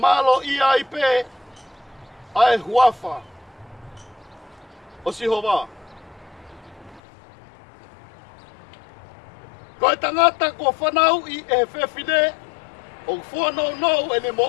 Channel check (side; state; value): right; drops out; at 7.0 s